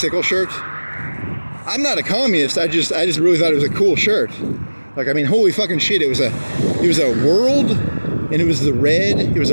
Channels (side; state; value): both; inverted; correlation -1.00